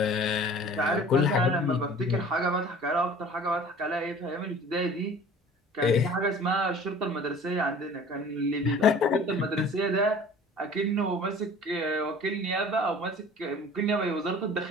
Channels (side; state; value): both; normal; correlation 0.46